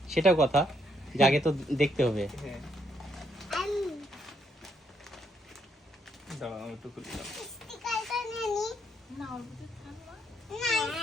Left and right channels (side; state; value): both; normal; correlation 0.74